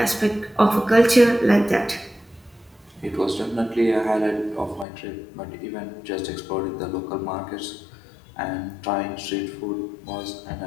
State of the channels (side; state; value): right; drops out; at 4.9 s